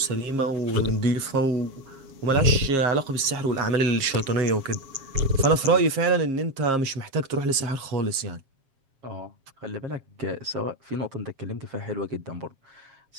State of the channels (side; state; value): left; late; 7.4 ms